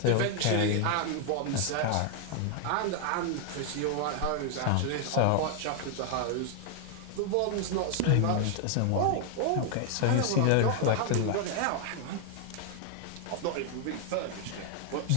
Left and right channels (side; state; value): both; different; correlation 0.00